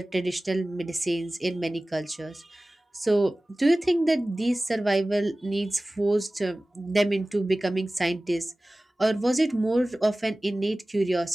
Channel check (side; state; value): both; normal; correlation 0.98